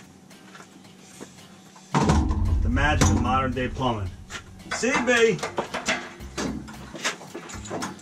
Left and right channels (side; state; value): both; identical; correlation 1.00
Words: Magic of modern day plumbing. CB!